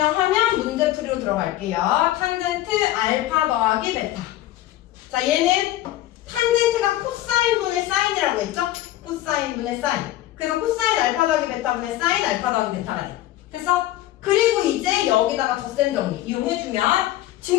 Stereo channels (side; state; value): right; quieter; 14.6 dB